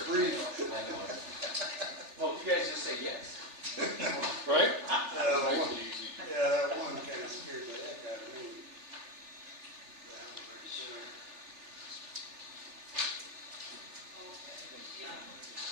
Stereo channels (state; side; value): late; left; 3.4 ms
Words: brief. I know. Well, you guys just say yes. Right? Yeah, that one kind of scared the heck out of me. That one right there.